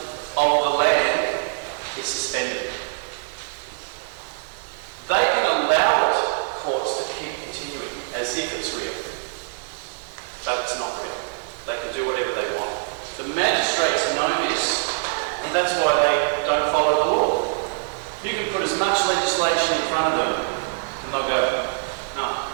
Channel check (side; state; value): left; silent; digital silence